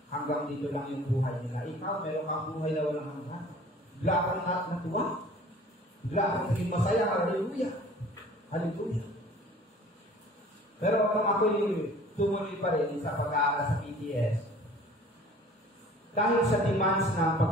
Hanggang dito lang yung buhay nila. Ikaw, meron kang buhay na walang hanggan. Bigla kang natuwa. Bigla kang naging masaya. Hallelujah. Hallelujah. Pero kung ako'y tumuloy pa rin sa pag-aaral sa PTS, dahil sa demands ng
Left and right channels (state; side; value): normal; both; correlation 0.48